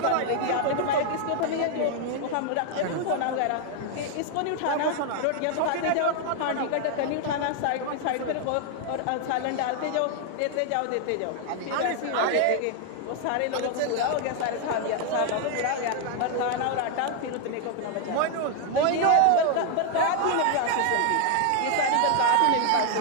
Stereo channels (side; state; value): both; different; correlation 0.00